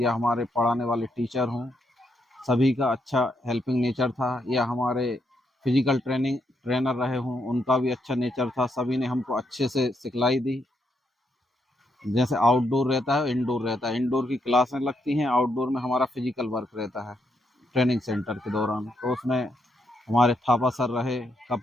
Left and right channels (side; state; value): both; normal; correlation 0.78